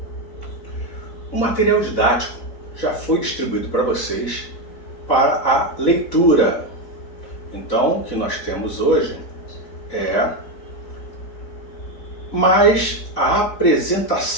O material didático já foi distribuído para vocês para a leitura. Então, o que nós temos hoje é mais a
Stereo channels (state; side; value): late; right; 4.1 ms